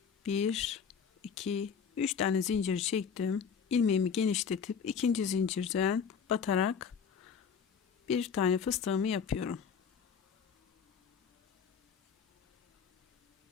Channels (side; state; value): right; quieter; 6.6 dB